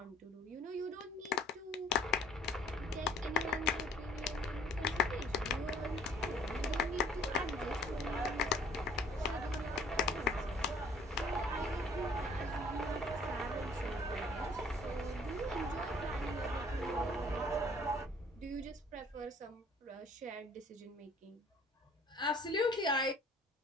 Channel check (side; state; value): both; normal; correlation 0.56